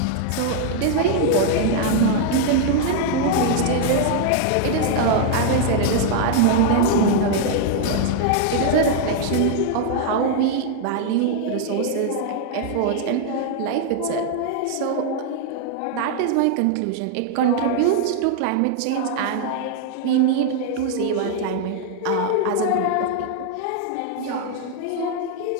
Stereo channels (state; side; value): different; both; correlation 0.00